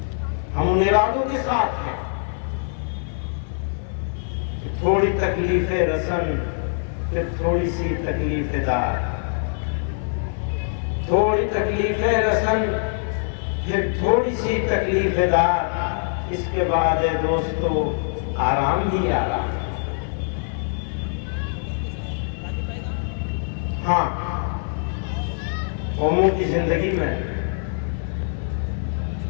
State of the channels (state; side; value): silent; right; 56 dB below the other